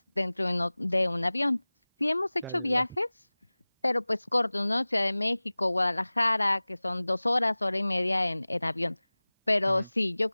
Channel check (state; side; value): inverted; both; correlation -1.00